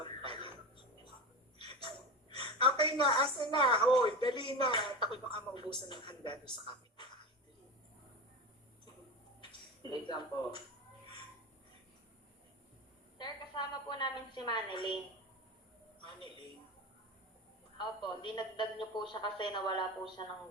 pala. Okay na, asa na? Hoy, dali na. Takot baka maubusan ng handa doon sa kapitbahay. Wait lang po. Sir, kasama po namin si Manilyn. Maniling. Opo, dinagdag niyo po siya kasi nawala po siya ng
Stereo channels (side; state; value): both; normal; correlation 0.25